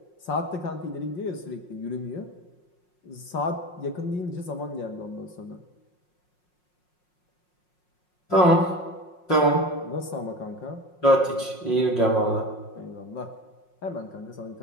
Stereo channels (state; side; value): late; right; 5.5 ms